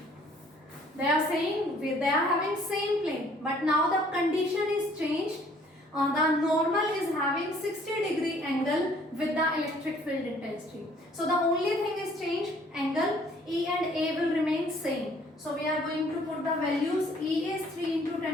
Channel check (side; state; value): both; normal; correlation 0.59